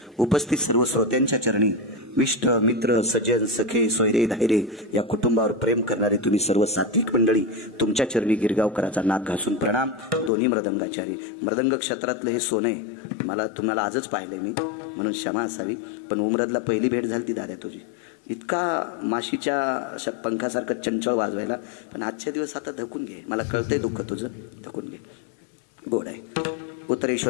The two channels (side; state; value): right; drops out; at 10.3 s